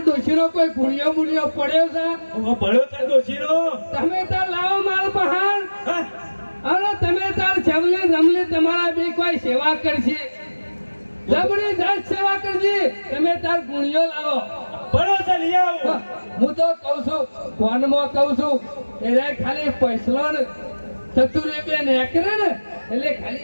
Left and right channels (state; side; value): inverted; both; correlation -1.00